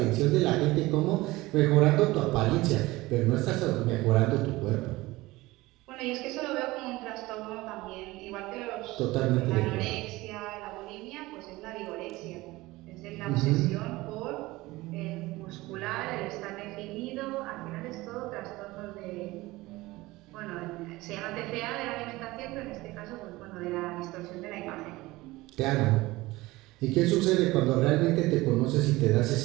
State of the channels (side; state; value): left; quieter; 19.8 dB